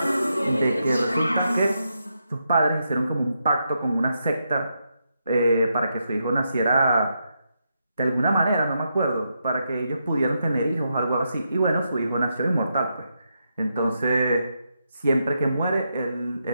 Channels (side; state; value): both; inverted; correlation -0.83